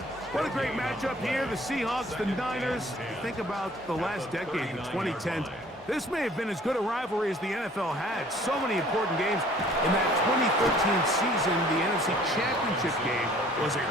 What a great matchup here. The Seahawks, the Niners. Think about the last decade, the 2010s. This may have been as good a rivalry as the NFL had. So many important games. In that 2013 season, the NFC Championship game was a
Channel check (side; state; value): both; normal; correlation 0.54